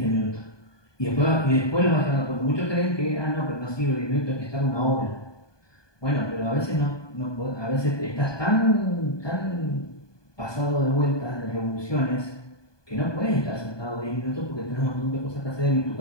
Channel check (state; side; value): late; right; 1.2 ms